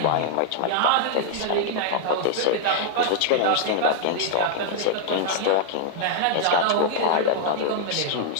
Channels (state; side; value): different; both; correlation -0.01